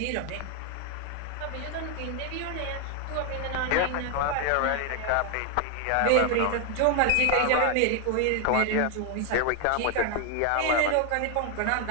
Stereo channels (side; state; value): both; different; correlation 0.01